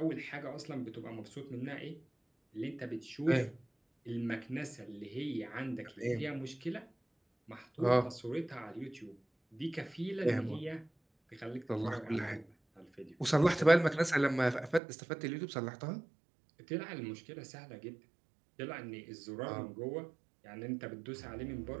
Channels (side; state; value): left; drops out; at 14.8 s